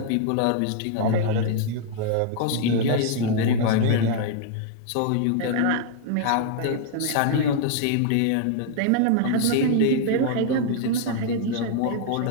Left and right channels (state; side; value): different; both; correlation -0.01